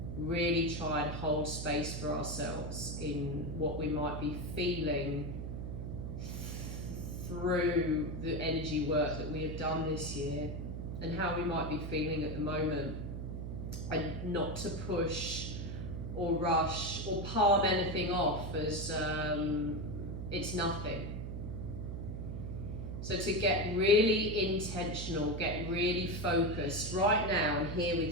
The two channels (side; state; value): right; noise; hum, 5 dB below the sound